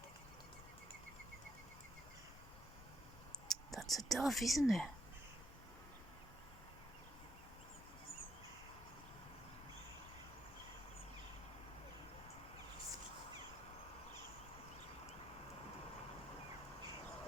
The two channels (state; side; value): normal; both; correlation 0.72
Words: That's a dove, isn't it?